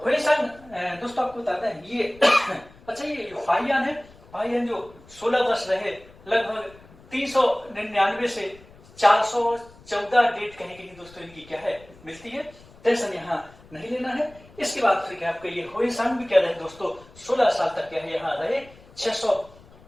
होइसांग दोस्तों आपको बताते हैं ये अच्छा ये फाहियान है, फाहियान जो 16 वर्ष रहे, लगभग 399 से 414 डेट कहीं कहीं दोस्तों इनकी क्या है मिलती है। टेंशन यहाँ नहीं लेना है। इसके बाद फिर क्या आपका ये होइसांग भी क्या रहे दोस्तों, 16 साल तक क्या है यहाँ रहे,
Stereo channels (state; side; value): noise; left; rumble, 24 dB below the sound